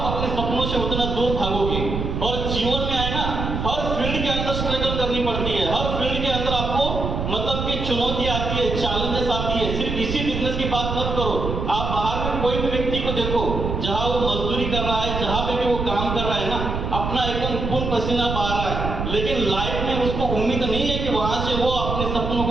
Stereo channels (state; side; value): noise; right; rumble, 3 dB below the sound